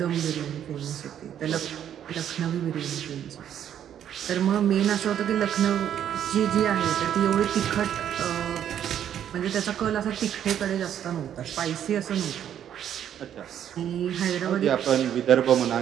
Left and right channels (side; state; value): left; quieter; 9.9 dB